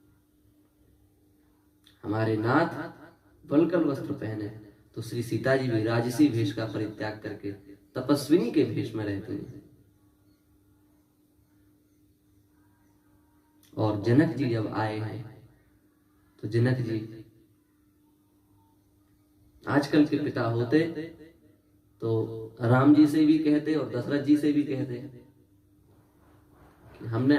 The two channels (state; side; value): identical; both; correlation 1.00